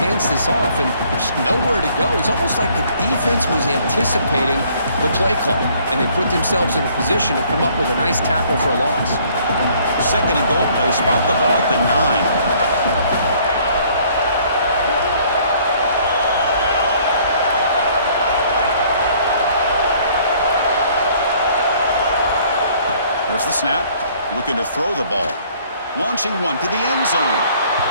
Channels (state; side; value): inverted; both; correlation -0.60